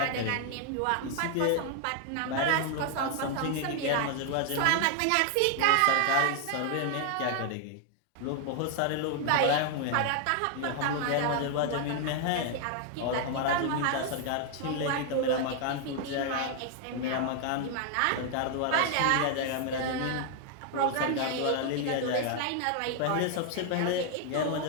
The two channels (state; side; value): different; both; correlation 0.00